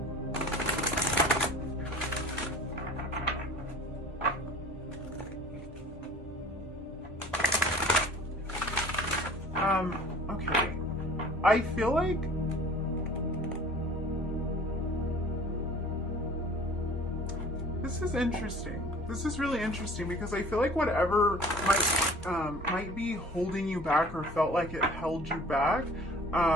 Okay. I feel like this is interesting. This is really interesting because I feel like whatever might be holding you back or felt like it held you back,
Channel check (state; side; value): normal; both; correlation 0.46